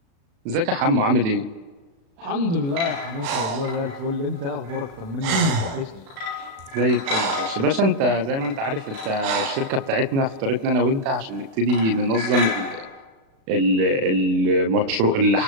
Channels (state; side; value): late; left; 37 ms